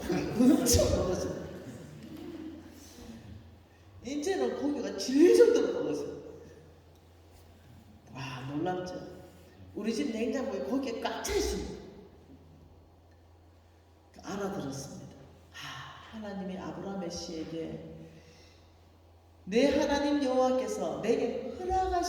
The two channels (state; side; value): identical; both; correlation 1.00